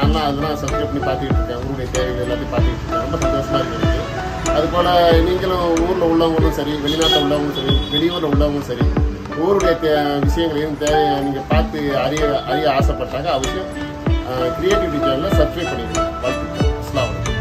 அதெல்லாம் சப்ஸ்கிரைப் பண்ணி பார்த்துக்கிட்டு இருக்கேன். ஊருடைய தேவைகள் எல்லாத்தையும் பார்த்துக்கிட்டு இருக்கேன். ரொம்ப சந்தோஷமா இருக்குது. அதுபோல் நீங்களும் ஊரில் உள்ளவங்களும் சரி, வெளிநாட்டில் உள்ளவங்களும் சரி, வெளியூரில் உள்ளவங்களும் சரி, ஊருடைய விஷயங்களையும் நீங்கள் பார்த்து அறிய ஆசைப்பட்டாங்க அவசியம் கிரியேட்டிவிட்டி சேனலில் சப்ஸ்கிரைப் பண்ணிடுங்க. வாழ்த்துக்கள்.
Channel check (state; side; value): identical; both; correlation 1.00